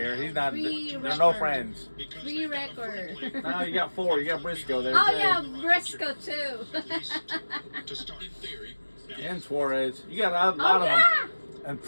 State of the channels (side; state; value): both; inverted; correlation -1.00